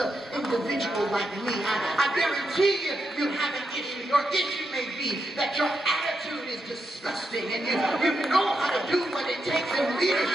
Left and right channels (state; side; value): normal; both; correlation 0.84